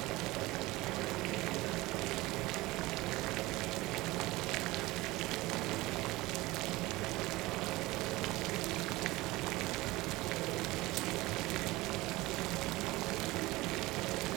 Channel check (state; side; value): quieter; left; 20.1 dB